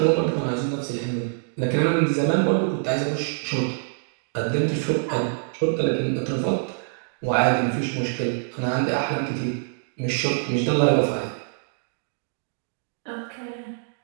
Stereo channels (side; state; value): left; silent; digital silence